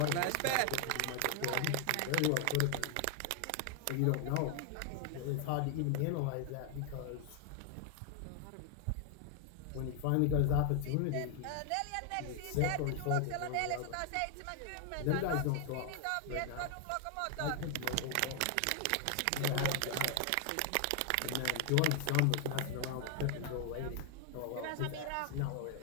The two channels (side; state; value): both; different; correlation 0.00